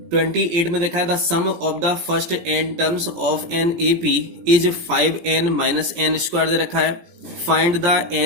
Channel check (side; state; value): left; late; 17 ms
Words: 28 में देखा है the sum of the first n terms of an AP is 5n minus n square दे रखा है। Find the